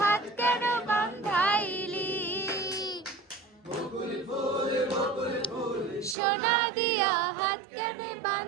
হাত কেন বাঁধাইলি সোনা দিয়া হাত কেন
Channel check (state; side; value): drops out; left; at 6.2 s